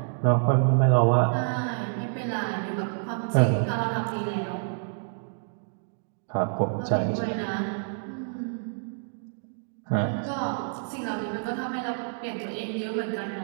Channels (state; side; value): silent; left; digital silence